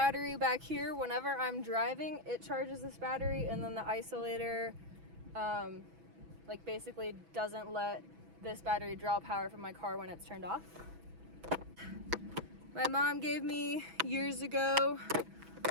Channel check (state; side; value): late; left; 6.1 ms